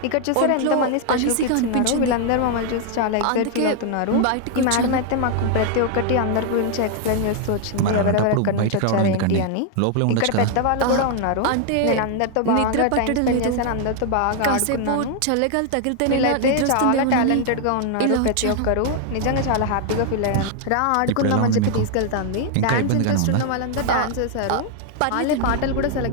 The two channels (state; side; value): different; both; correlation 0.00